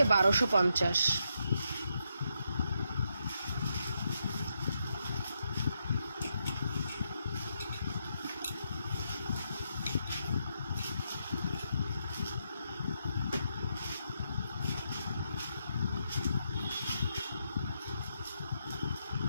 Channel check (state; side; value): inverted; both; correlation -0.81